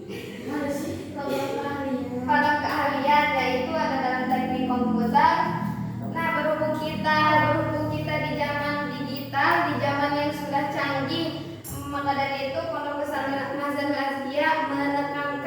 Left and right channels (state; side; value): identical; both; correlation 1.00